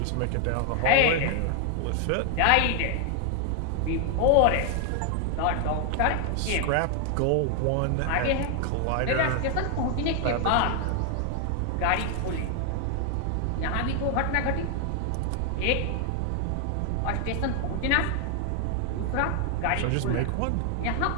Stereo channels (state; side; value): different; both; correlation 0.00